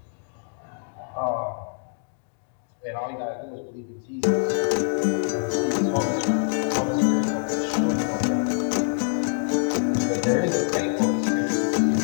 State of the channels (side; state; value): right; silent; digital silence